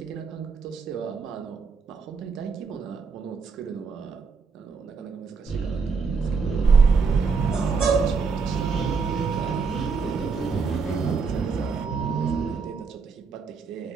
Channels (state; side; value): quieter; left; 5.1 dB